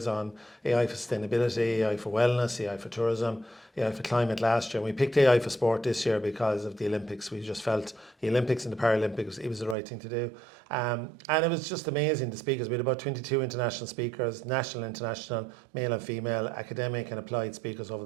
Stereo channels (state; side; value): drops out; left; at 9.8 s